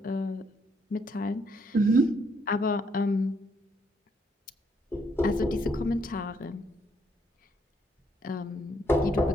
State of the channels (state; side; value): normal; both; correlation 0.72